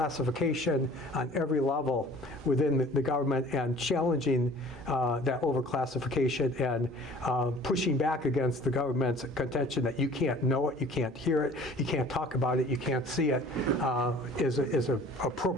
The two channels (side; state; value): both; normal; correlation 0.48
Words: on every level within the government, and challenging that overclassification and pushing back against the government's contention that you can't know it, you can't hear it, you can't talk about it, you can't see it, is an